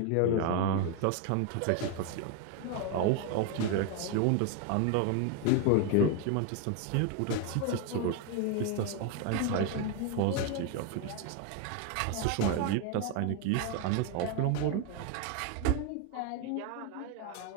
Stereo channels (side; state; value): both; different; correlation 0.01